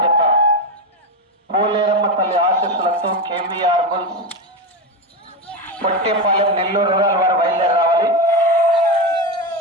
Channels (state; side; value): normal; both; correlation 0.15